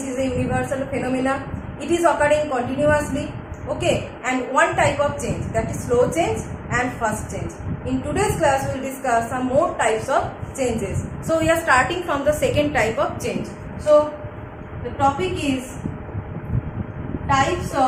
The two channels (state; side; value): identical; both; correlation 1.00